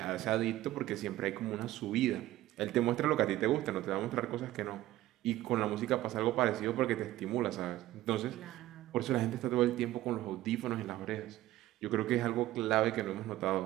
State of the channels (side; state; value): left; quieter; 15.3 dB